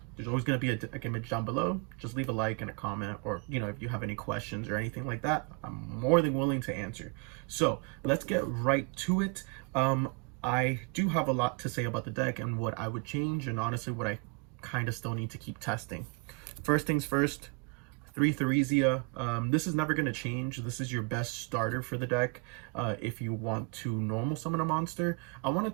there's always going to be a deck image down below. Just leave a like and a comment, or if you have any questions or anything like that, I'm more than willing to answer. So let's get right to it. I do have a lot to say about the deck and what I would change, and honestly what I kind of still need to keep testing. First things first, 3 Theresia. This is never going to change. This is your best starter for the deck. If you want to normal summon a monster, I wanted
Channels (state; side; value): quieter; left; 33.1 dB